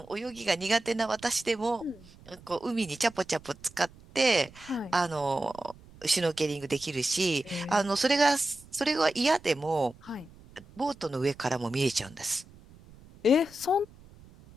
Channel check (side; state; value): right; noise; rumble, 23 dB below the sound